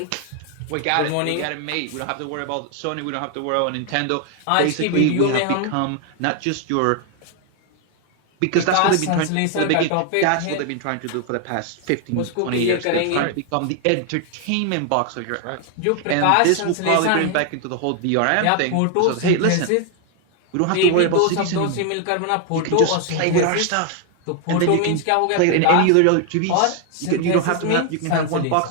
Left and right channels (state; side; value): different; both; correlation 0.00